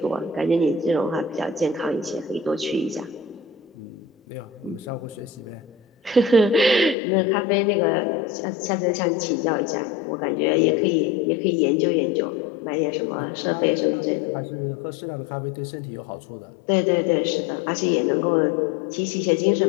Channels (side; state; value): right; drops out; at 7.0 s